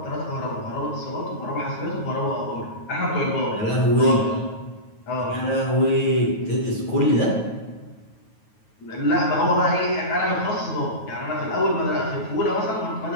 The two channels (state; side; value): late; right; 9.3 ms